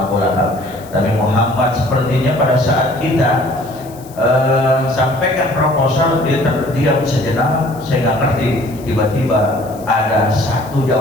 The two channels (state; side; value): noise; left; hiss, 23 dB below the sound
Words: Lahab. Tapi Muhammad sepertinya pada saat kita sampaikan proposal, dia terdiam sejenak. Saya nggak ngerti. Tiba-tiba ada satu